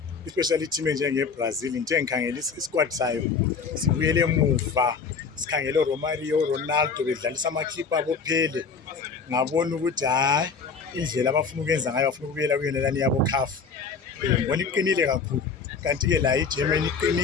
especially team enjengeBrazil. Ngithe ngikhangela isquad sayo sibuyele emuva, sikhangele uRomario, Ronaldo bedlalisa ama-clip abo phele. Ngabona ukuthi hayi indlela abafuna ukwenza ngayo bafuna ukubuyela kuyonelani yabo CAF. Ngibona iqinile kakhulu. Kanti-ke la iGermany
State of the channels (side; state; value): right; quieter; 5.3 dB